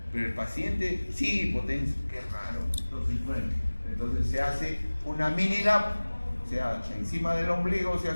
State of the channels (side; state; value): both; inverted; correlation -1.00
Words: Pero el paciente sí hipotenso, qué raro. Entonces, bueno, entonces se hace una mini lap, o sea, encima del ombligo se